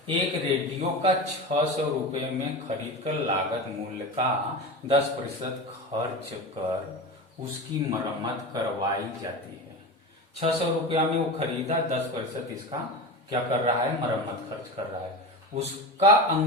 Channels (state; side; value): normal; both; correlation 0.26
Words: एक रेडियो का 600 रुपए में खरीद कर लागत मूल्य का 10% खर्च कर उसकी मरम्मत करवाई जाती है। 600 रुपया में वो खरीदा, 10% इसका क्या कर रहा है, मरम्मत खर्च कर रहा है। उसका